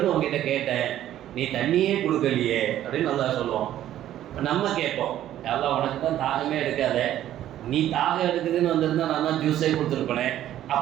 உங்ககிட்ட கேட்டேன், நீ தண்ணியே கொடுக்கலையே அப்படின்னு அல்லாஹ் சொல்லுவான். நம்ம கேட்போம், அல்லாஹ் உனக்கு தான் தாகமே எடுக்காத, நீ தாகம் எடுக்குதுன்னு வந்திருந்தா நான் தான் ஜூஸே கொடுத்துருப்பேனே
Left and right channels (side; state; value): left; quieter; 12.3 dB